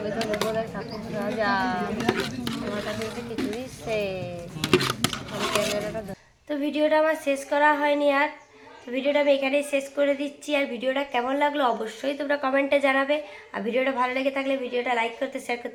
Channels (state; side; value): identical; both; correlation 1.00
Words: তো নেবো না 7,000 আমার কাছে তো কিছু দিচ্ছে আমি ক্যামেরাটা তো ভিডিওটা আমার শেষ করা হয়নি আর তো ভিডিওটা আমি এখানেই শেষ করে দিচ্ছি আর ভিডিওটা কেমন লাগলো অবশ্যই তোমরা কমেন্টে জানাবে আর ভিডিওটা ভালো লেগে থাকলে ভিডিওটা লাইক করতে শেয়ার